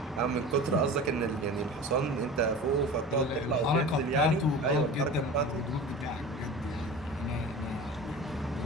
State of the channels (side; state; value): both; normal; correlation 0.35